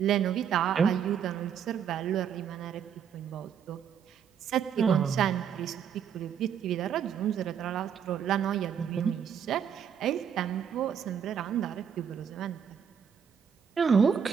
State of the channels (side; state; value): left; quieter; 7.9 dB